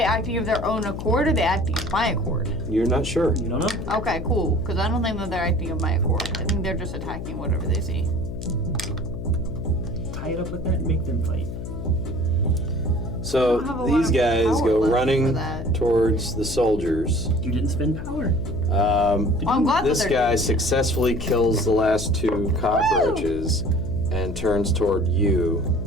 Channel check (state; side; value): noise; left; hum, 7 dB below the sound